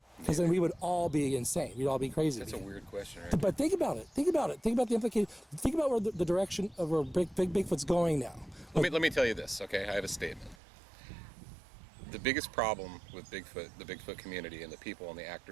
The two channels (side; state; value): left; drops out; at 10.6 s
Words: Because then we would all be insane. We'd all be crazy. That's a weird question, right? But think about it. Think about the implication. Think about where the direction of where Bigfoot's going now. Let me tell you this, okay? I have a statement. The biggest problem with Bigfoot, the Bigfoot community, and the people and the